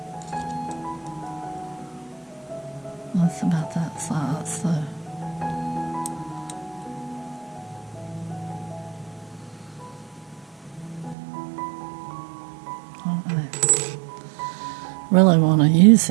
That's about that size, so. I really want to use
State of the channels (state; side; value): drops out; left; at 11.2 s